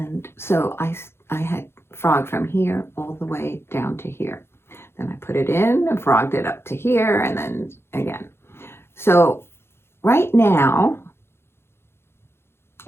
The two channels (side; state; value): right; late; 0.12 ms